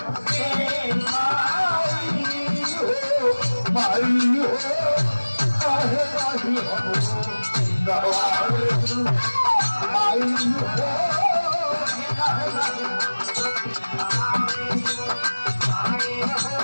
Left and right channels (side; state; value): both; inverted; correlation -1.00